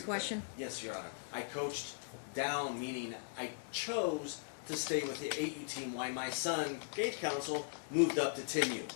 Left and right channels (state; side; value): silent; right; 52 dB below the other